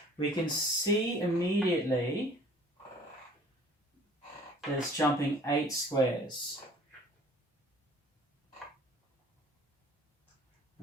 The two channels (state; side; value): normal; both; correlation 0.52